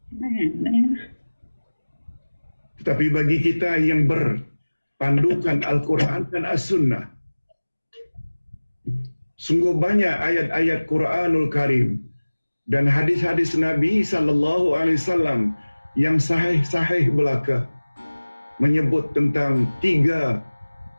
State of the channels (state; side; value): inverted; both; correlation -1.00